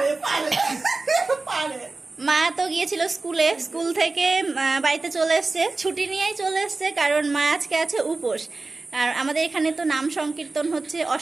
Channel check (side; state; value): left; quieter; 3.5 dB